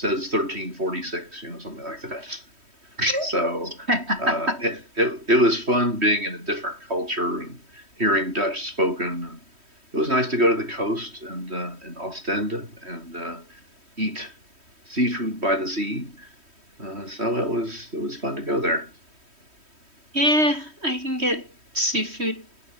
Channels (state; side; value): late; left; 3.1 ms